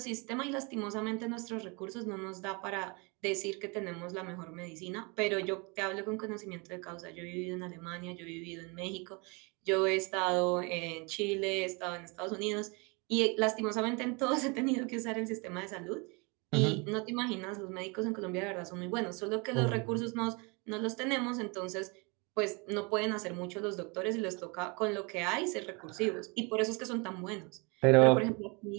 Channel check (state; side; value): quieter; left; 30.2 dB